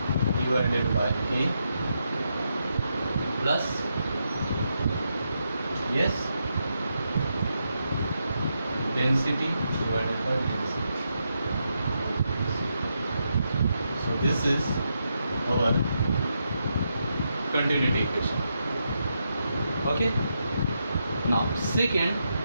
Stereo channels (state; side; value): inverted; both; correlation -0.83